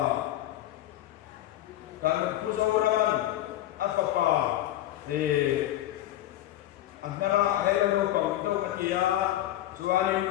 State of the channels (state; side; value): quieter; right; 13.7 dB